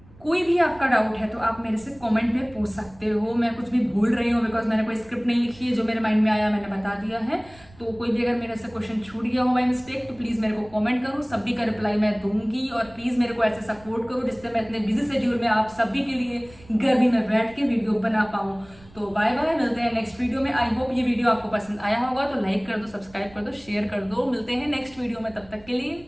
कोई भी आपका डाउट है तो आप मेरे से कमेंट में पूछ सकते हो। मैं कुछ भी भूल रही हूँ बिकॉज मैंने कोई स्क्रिप्ट नहीं लिखी है, जो मेरे माइंड में आया मैंने बता दिया है। तो कोई भी अगर मेरे से क्वेश्चन छूट गया हो बाय मिस्टेक तो प्लीज़ मेरे को कमेंट करो, सभी का रिप्लाई मैं दूंगी। और प्लीज़ मेरे को ऐसे सपोर्ट करो जिससे मैं इतने बिजी शेड्यूल में आप सभी के लिए गर्मी में बैठ के वीडियो बना पाऊँ। तो बाय बाय, मिलते हैं नेक्स्ट वीडियो में। आई होप ये वीडियो आपको पसंद आया होगा, तो लाइक कर दो, सब्सक्राइब कर दो, शेयर कर दो। मिलते हैं नेक्स्ट वीडियो में, तब तक के लिए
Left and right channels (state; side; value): noise; right; rumble, 24 dB below the sound